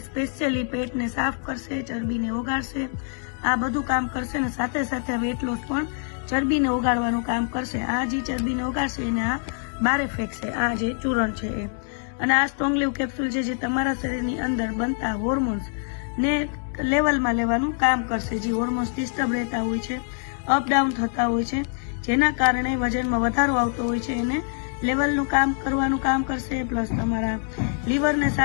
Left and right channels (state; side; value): silent; right; 57 dB below the other